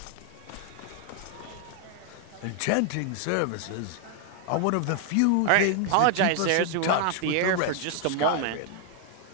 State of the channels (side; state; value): both; different; correlation 0.00